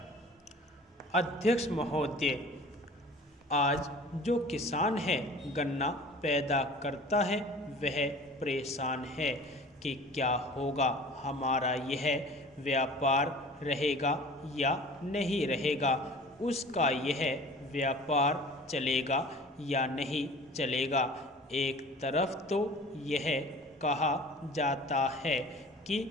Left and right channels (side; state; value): both; normal; correlation 0.44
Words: अध्यक्ष महोदय, आज जो किसान है गन्ना पैदा करता है वह परेशान है कि क्या होगा, हमारा यह व्यापार रहेगा या नहीं रहेगा, उसका यह व्यापार चलेगा या नहीं चलेगा। एक तरफ तो यह कहा जाता है कि